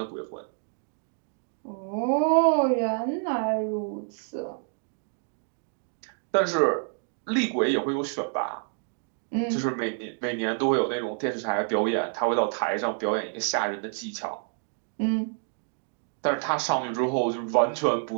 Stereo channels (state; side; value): silent; left; 59 dB below the other